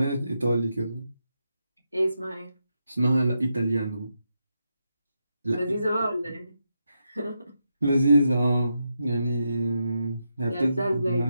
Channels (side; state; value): both; inverted; correlation -0.85